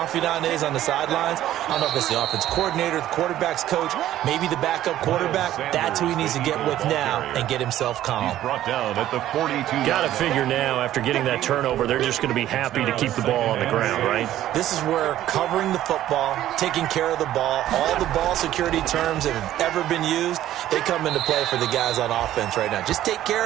is on the sidelines, I don't know if it's the offense coordinator, the quarterback's coach, maybe the backup quarterback, that's who he needs to get with now and get himself calm. He's brought down at the 42. Got to figure now, after getting that turnover, they're just going to be happy to keep the ball on the ground, right? This is where covering the football, taking care of the ball, all the ball security terms that have ever been used, they come into play for the guys on offense right now. Just take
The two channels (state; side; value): quieter; left; 13.0 dB